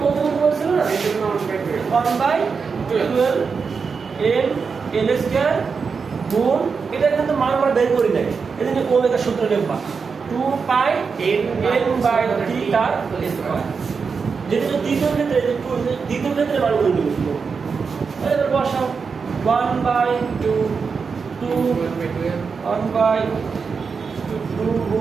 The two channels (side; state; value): left; quieter; 5.4 dB